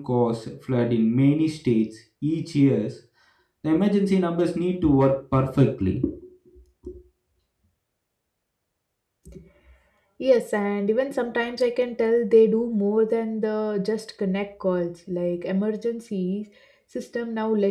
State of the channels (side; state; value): both; identical; correlation 1.00